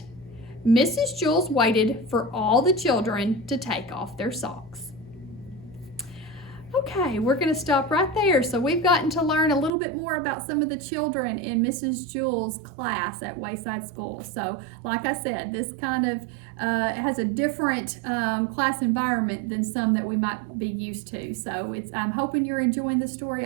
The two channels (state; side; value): drops out; left; at 9.7 s